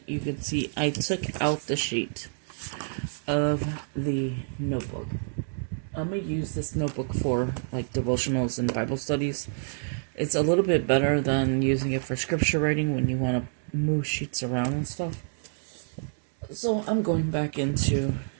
you can see I took out the sheet of the notebook. I'm going to use this notebook for like devotionals and Bible studies. It's a little bit better than using it for scripture writing when you want to move sheets around and stuff. So I'm going back into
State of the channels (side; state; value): left; silent; digital silence